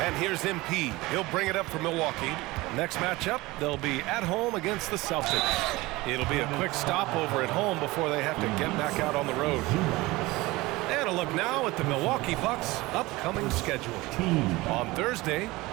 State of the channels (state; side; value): quieter; left; 20.8 dB